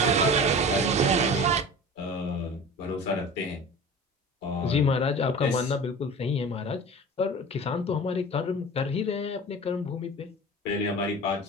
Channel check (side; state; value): both; normal; correlation 0.37